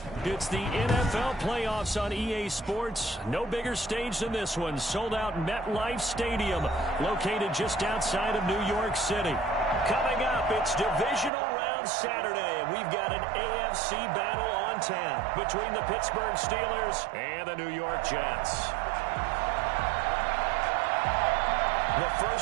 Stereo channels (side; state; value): left; drops out; at 11.3 s